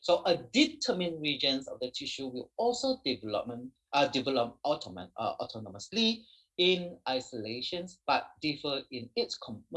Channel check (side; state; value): both; identical; correlation 1.00